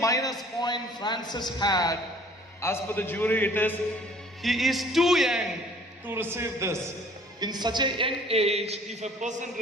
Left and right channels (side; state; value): both; normal; correlation 0.54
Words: point Francis had, as per the jury, it is he is too young to receive this. In such a young age, if a person